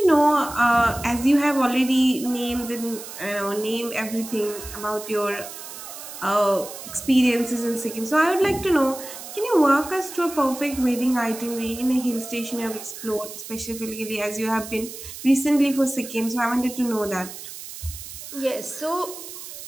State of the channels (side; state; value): right; noise; hiss, 12 dB below the sound